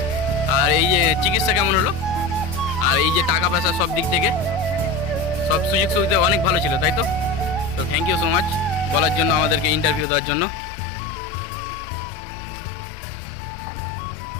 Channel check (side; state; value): right; drops out; at 10.1 s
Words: আর এই যে চিকিৎসা কেমন হলো? আর এই যে টাকা পয়সা সব দিক থেকে সব সুযোগ সুবিধা অনেক ভালো ছিল, তাই তো? তো থ্যাংক ইউ সো মাচ বলার জন্য, আমাদেরকে ইন্টারভিউ দেওয়ার জন্য।